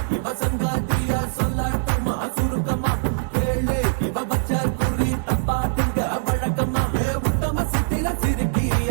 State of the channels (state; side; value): silent; left; digital silence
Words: இவ சங்காத்தியா சொல்லாட்டுமா சுருக்கமா கேளு இவ பச்ச குறி தப்பா திங்க வழக்கமா உத்தம சித்திர சிறுக்கி